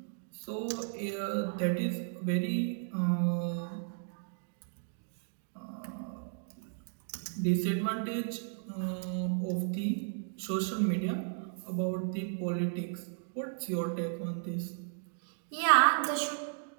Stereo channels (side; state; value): left; silent; digital silence